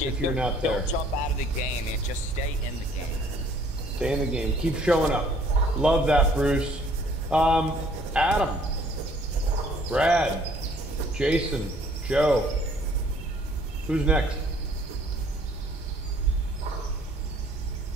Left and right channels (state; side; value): normal; both; correlation 0.59